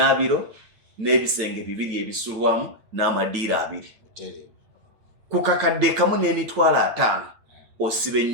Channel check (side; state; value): left; late; 8.8 ms